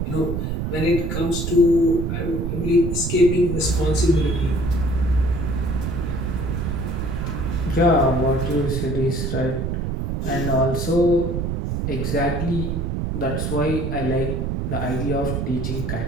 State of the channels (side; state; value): right; noise; rumble, 2 dB below the sound